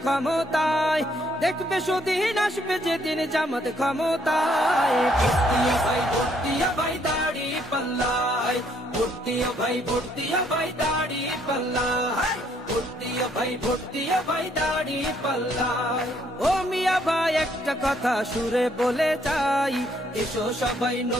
ক্ষমতায়, দেখবে সুদিন আসবে যেদিন জামাত ক্ষমতায়। ভর্তিয়া ভাই ভর্তিয়া ভাই দাড়ি পাল্লায়, ভর্তিয়া ভাই ভর্তিয়া ভাই দাড়ি পাল্লায়, ভর্তিয়া ভাই ভর্তিয়া ভাই দাড়ি পাল্লায়। ও মিয়া ভাই একটা কথা সুরে বলে যাই, এসো সবাই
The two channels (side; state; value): both; normal; correlation 0.68